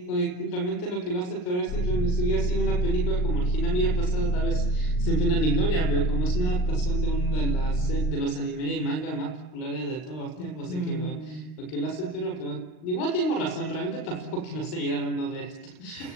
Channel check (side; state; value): right; late; 39 ms